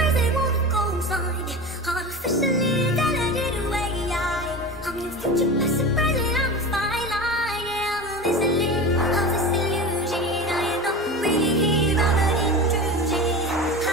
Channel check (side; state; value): both; normal; correlation 0.29